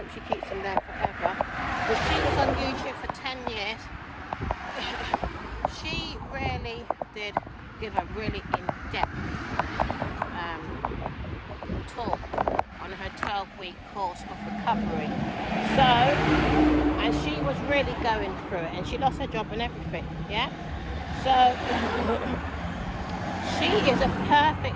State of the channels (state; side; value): identical; both; correlation 1.00